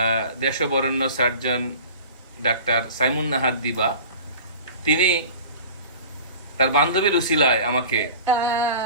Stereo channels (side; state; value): both; inverted; correlation -0.41